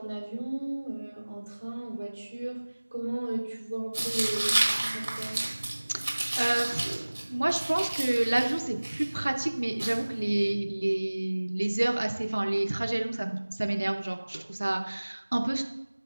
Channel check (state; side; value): inverted; both; correlation -1.00